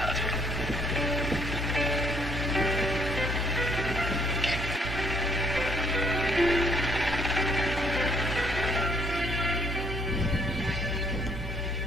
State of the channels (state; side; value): normal; both; correlation 0.67